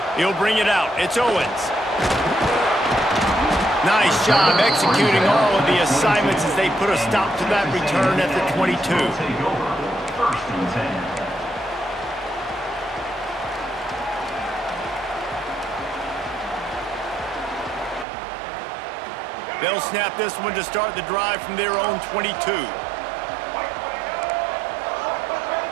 He'll bring it out. It's Owens. Nice job executing all of the assignments as they put a stop to that return at the 22. Take over. 1st and 10. They'll snap this one to start the drive from their own 22.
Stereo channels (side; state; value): left; drops out; at 18.1 s